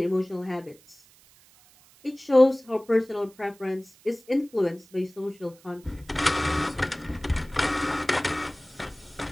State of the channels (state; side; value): noise; right; hiss, 27 dB below the sound